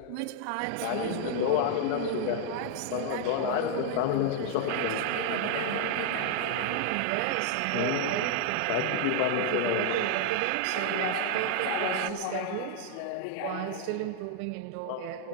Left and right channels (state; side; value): different; both; correlation 0.00